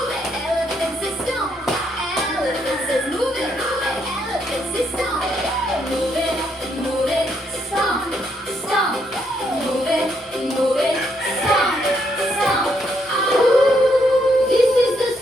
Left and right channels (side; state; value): both; normal; correlation 0.74